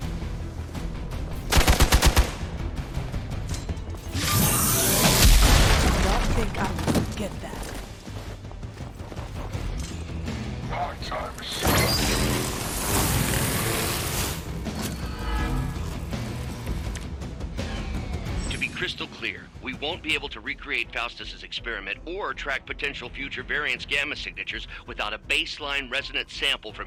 Crystal clear. We won't be able to recreate Faustus's experiment or track potential future variance gamma signatures without a baseline resonant sample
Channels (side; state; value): both; identical; correlation 1.00